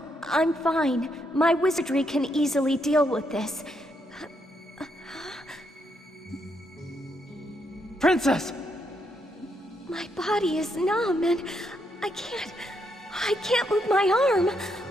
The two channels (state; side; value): normal; both; correlation 0.78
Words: I'm fine. My wizardry can easily deal with this. Princess! My body is numb and I can't move my arm.